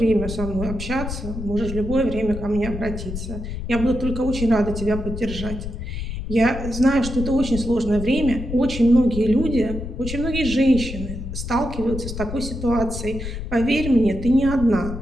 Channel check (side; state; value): left; noise; rumble, 7 dB below the sound